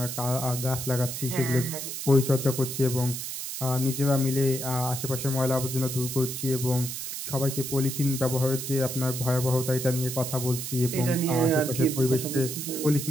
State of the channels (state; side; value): noise; right; hiss, 6 dB below the sound